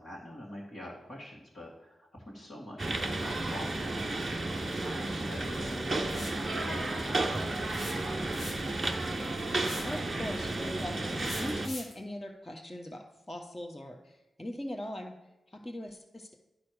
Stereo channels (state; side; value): normal; both; correlation 0.92